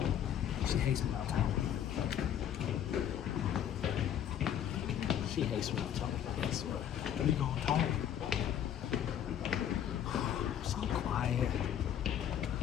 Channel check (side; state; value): right; quieter; 9.9 dB